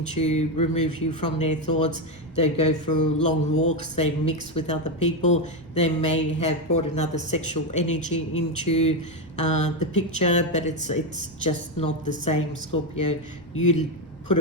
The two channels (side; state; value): right; noise; rumble, 25 dB below the sound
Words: to remove you from their thoughts. They go for long walks, they mix with other people, they may have brought another sexual energy into the picture, but it's just not the same, Scorpio. You put a